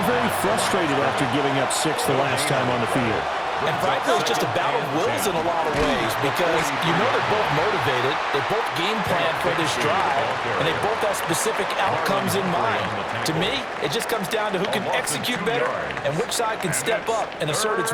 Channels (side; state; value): both; identical; correlation 1.00